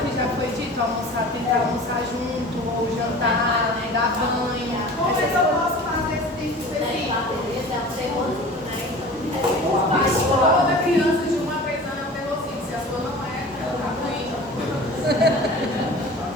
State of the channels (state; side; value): normal; both; correlation 0.40